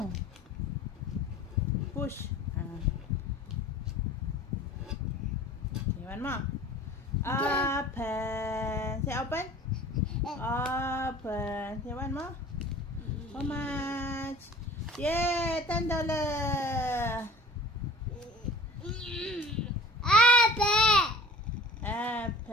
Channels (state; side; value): normal; both; correlation 0.43